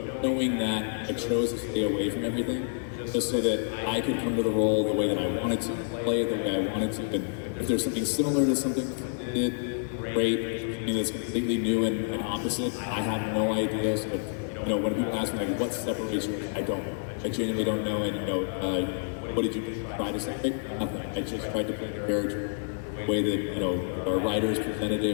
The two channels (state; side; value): silent; right; 59 dB below the other